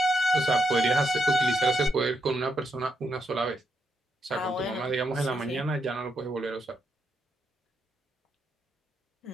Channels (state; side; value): normal; both; correlation 0.80